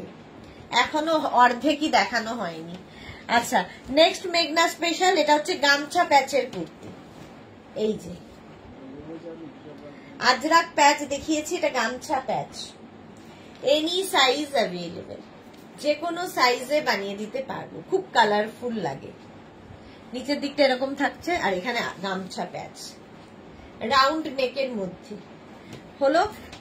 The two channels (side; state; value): both; identical; correlation 1.00